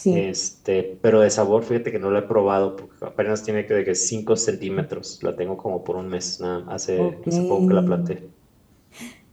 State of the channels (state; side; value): identical; both; correlation 1.00